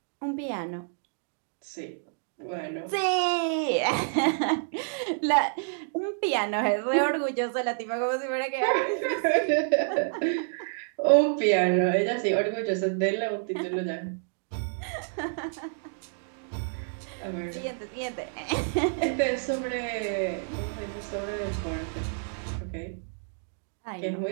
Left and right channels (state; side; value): silent; left; digital silence